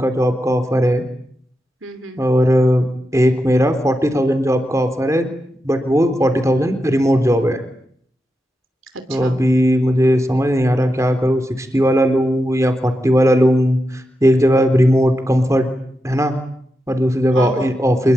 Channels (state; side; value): normal; both; correlation 0.88